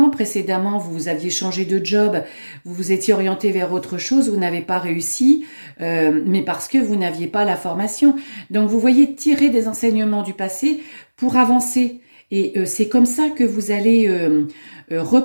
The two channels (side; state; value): both; inverted; correlation -1.00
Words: précédemment, vous aviez changé de job, vous vous étiez orienté vers autre chose, vous n'avez pas réussi, mais parce que vous n'aviez pas la formation. Donc, vous voyez, tirer des enseignements du passé pour avancer. Et c'est comme ça que vous allez